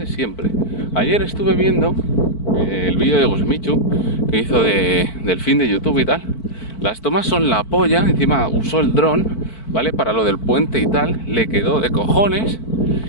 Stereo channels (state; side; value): late; right; 4.5 ms